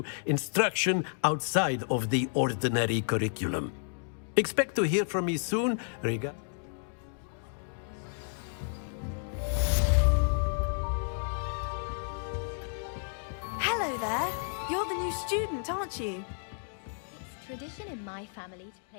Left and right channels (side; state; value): right; silent; digital silence